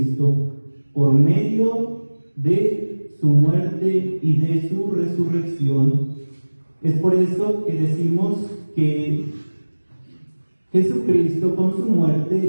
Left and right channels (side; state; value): both; inverted; correlation -1.00